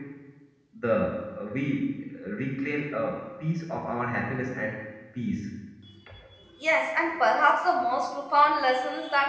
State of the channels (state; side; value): identical; both; correlation 1.00